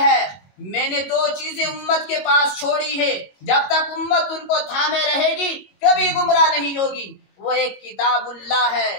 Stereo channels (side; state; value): right; late; 22 ms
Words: میں نے 2 چیزیں امت کے پاس چھوڑی ہے، جب تک امت ان کو تھامے رہے گی کبھی گمراہ نہیں ہوگی۔ وہ ایک کتاب اللہ